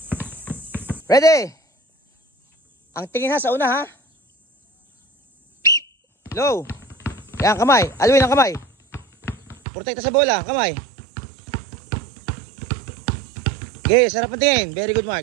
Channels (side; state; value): left; drops out; at 9.6 s